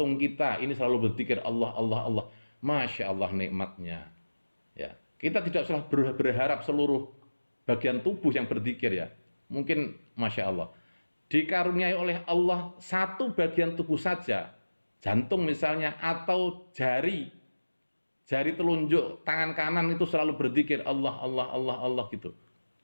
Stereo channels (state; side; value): inverted; both; correlation -1.00